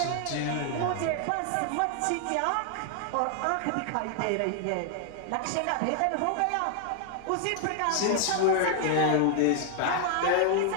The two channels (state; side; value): different; both; correlation 0.00